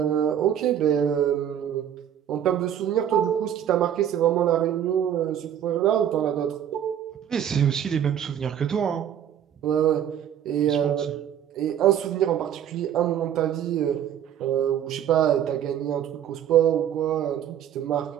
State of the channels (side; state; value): left; quieter; 9.9 dB